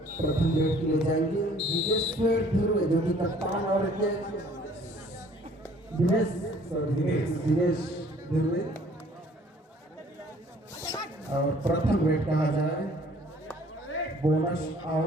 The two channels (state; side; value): normal; both; correlation 0.56